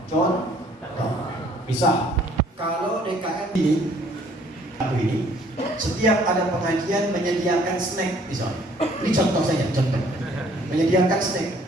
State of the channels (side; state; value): both; normal; correlation 0.60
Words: Contoh. Misal, kalau DKM ini, setiap ada pengajian menyediakan snack, misalnya. Ini contoh saja, contoh. Menyediakan snack,